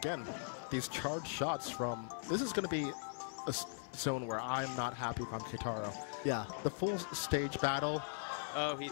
these charged shots from... This is going to be a zone where I'm not happy from Keitaro. Yeah. The full stage battle... Oh, he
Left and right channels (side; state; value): right; silent; digital silence